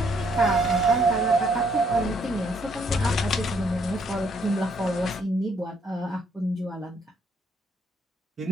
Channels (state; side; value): normal; both; correlation 0.69